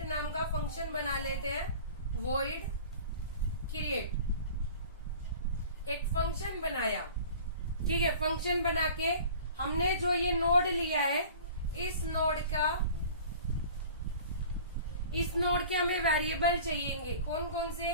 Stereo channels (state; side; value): inverted; both; correlation -0.43